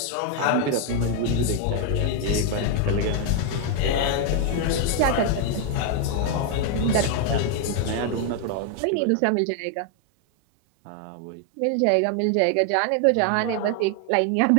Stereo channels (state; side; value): different; both; correlation 0.00